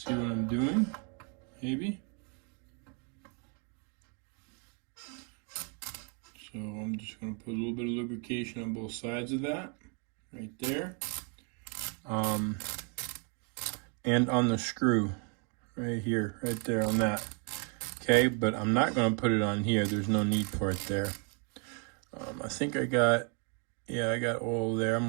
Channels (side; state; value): left; quieter; 37.4 dB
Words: what I'm doing, maybe. So I'm just going to put a little bit of lubrication on both sides of that, right there. And on the screw, right here, right there on that. Okay, but I'm not going to put it on here. There's no need for it there. I think I got oil there. I'm